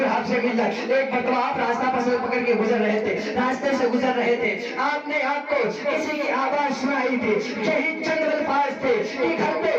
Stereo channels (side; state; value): both; identical; correlation 1.00